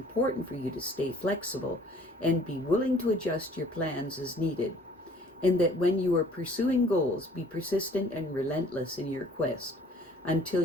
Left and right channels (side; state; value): both; normal; correlation 0.55